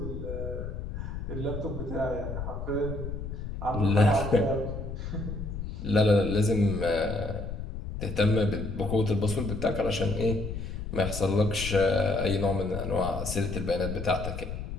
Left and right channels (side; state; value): left; noise; rumble, 6 dB below the sound